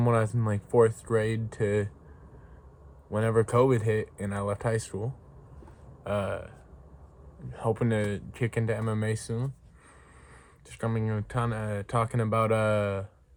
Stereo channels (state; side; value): identical; both; correlation 1.00